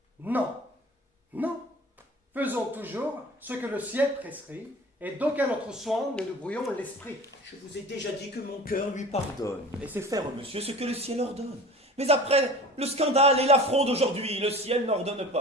Non, non. Faisons toujours ce que le ciel prescrit, et d'aucun autre soin ne nous brouillons l'esprit. Je vous ai déjà dit que mon cœur lui pardonne, et fait faire, monsieur, ce que le ciel ordonne. Mais après le scandale et l'affront d'aujourd'hui, le ciel n'ordonne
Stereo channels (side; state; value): both; normal; correlation 0.39